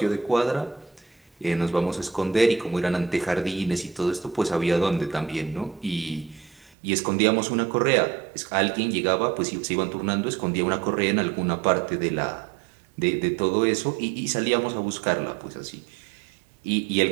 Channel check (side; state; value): left; drops out; at 6.8 s